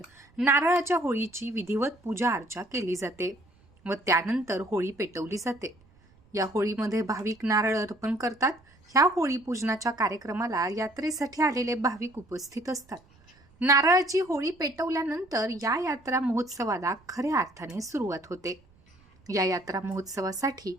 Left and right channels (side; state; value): right; noise; rumble, 30 dB below the sound